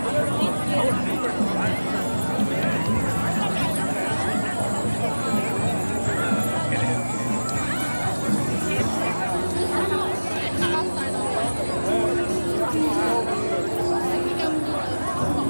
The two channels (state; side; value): inverted; both; correlation -1.00